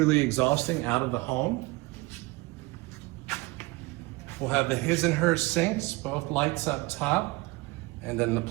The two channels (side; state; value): left; quieter; 22.7 dB